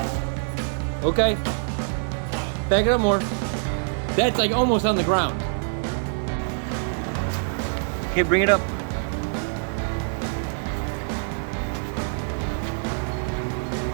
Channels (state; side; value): silent; left; 56 dB below the other